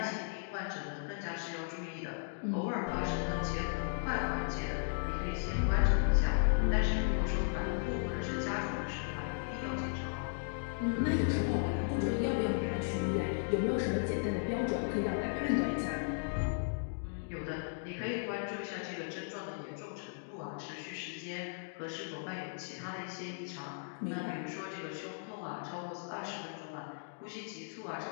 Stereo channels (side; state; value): right; silent; digital silence